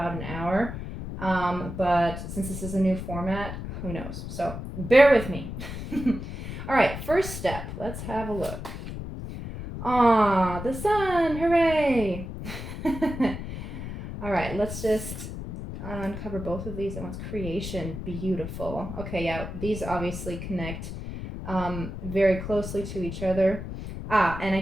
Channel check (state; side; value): noise; left; rumble, 8 dB below the sound